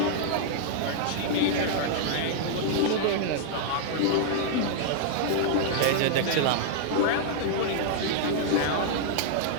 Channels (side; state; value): both; different; correlation -0.01